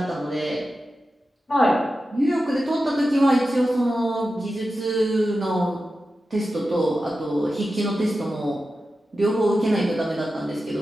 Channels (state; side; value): normal; both; correlation 0.92